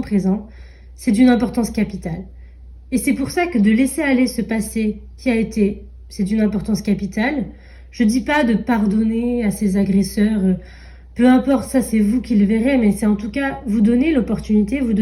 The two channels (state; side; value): identical; both; correlation 1.00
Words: présent, c'est d'une importance capitale. Et c'est pour ça que de laisser aller ce passé qui a été, c'est d'une importance capitale. Je dis pas de pardonner à ses agresseurs, peu importe, ça c'est vous qui le verrez, mais c'est en tout cas vous donner l'opportunité, vous